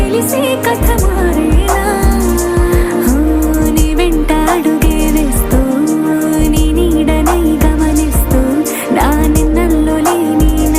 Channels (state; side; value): identical; both; correlation 1.00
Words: కథ మారేనా నీ వెంట అడుగే వేస్తూ నీ నీడనై గమనిస్తూ నా నిన్నల్లో లేని